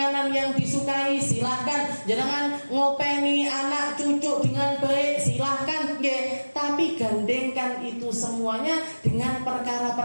yang disukai silahkan, jenengan ngopeni anak cucu dengan baik silahkan, tapi gandengkan itu semuanya dengan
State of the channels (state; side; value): inverted; both; correlation -1.00